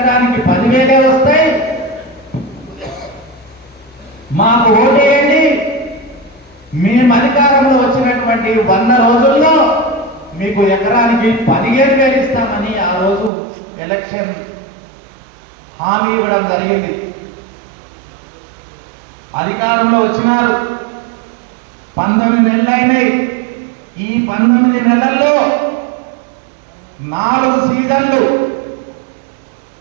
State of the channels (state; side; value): drops out; left; at 13.3 s